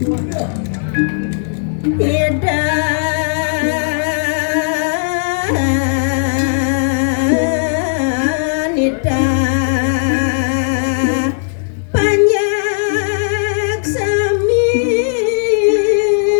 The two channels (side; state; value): right; silent; digital silence